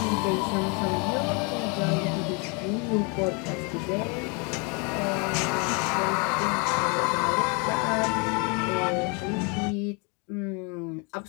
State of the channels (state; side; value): quieter; right; 33.1 dB